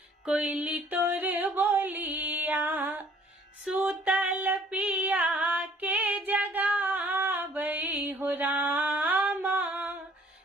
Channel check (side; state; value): both; normal; correlation 0.58